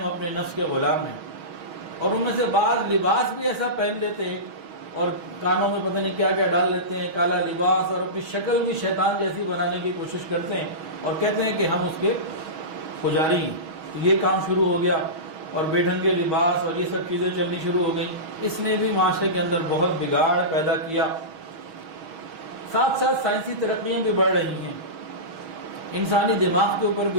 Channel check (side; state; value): left; late; 6.3 ms